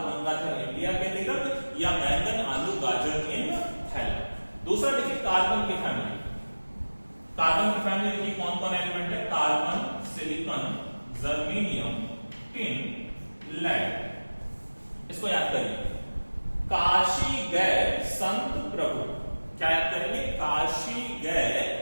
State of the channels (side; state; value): both; inverted; correlation -1.00